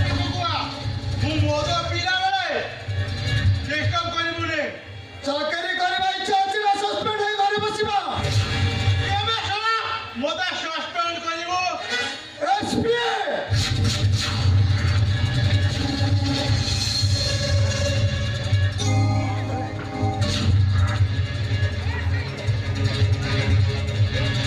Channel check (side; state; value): both; identical; correlation 1.00